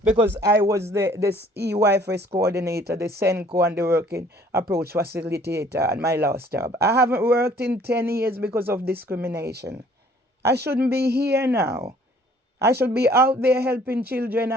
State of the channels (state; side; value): normal; both; correlation 0.57